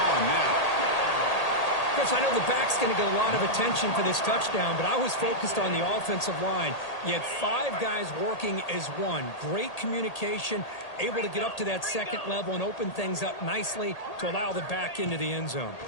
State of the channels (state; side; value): late; right; 1.8 ms